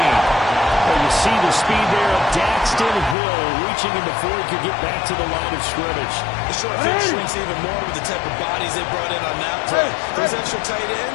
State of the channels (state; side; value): drops out; right; at 3.2 s